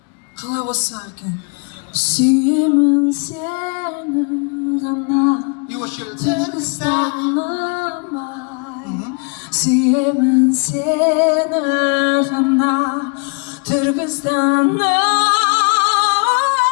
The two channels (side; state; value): right; quieter; 35.9 dB